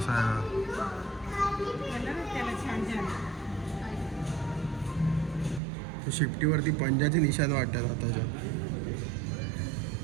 आहे. शिफ्टीवरती पंजाचे निशाण वाटतात आताच्या.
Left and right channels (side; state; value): left; drops out; at 5.6 s